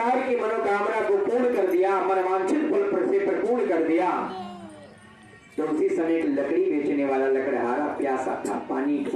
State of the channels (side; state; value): both; identical; correlation 1.00